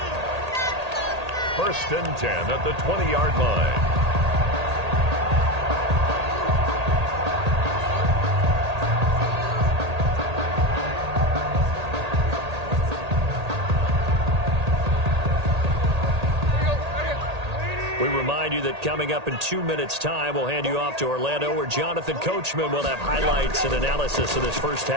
1st and 10 at the 20-yard line. We remind you that coming up in 2 minutes' time, we'll hand you off to Orlando, where Jonathan Coachman will have highlights and analysis of this first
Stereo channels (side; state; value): left; late; 1.8 ms